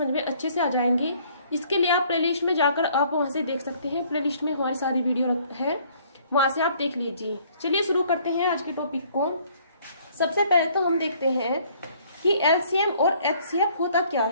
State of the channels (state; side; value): inverted; both; correlation -0.60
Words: में अच्छे से आ जाएंगे। इसके लिए आप प्लेलिस्ट में जाकर आप वहां से देख सकते हैं। प्लेलिस्ट में हमारी सारी वीडियो है, वहां से आप देख लीजिए। चलिए शुरू करते हैं आज के टॉपिक को। सबसे पहले तो हम देखते हैं कि एलसीएम और एचसीएफ होता क्या